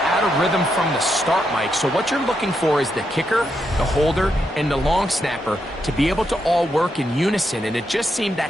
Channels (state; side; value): normal; both; correlation 0.82